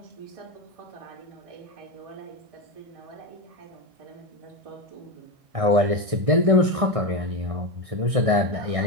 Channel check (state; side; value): late; left; 1.6 ms